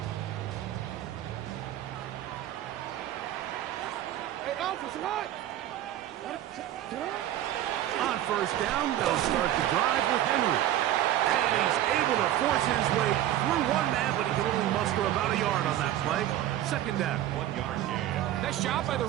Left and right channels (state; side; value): quieter; left; 12.7 dB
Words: Hey, Alpha, sit on. On first down, they'll start the drive with Henry. And he's able to force his way through one man, but he can only muster about a yard on that play. Second down. 1 yard gain. Nice job by the